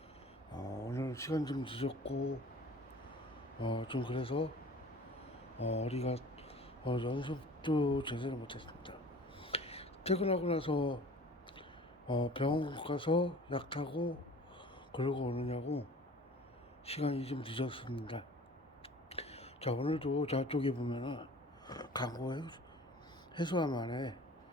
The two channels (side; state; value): both; normal; correlation 0.45